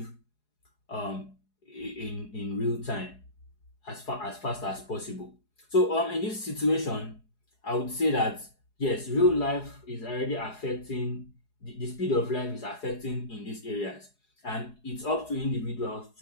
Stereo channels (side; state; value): right; late; 4.8 ms